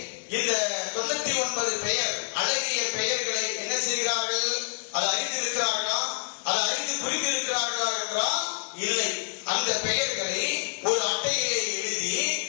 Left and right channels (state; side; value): silent; right; digital silence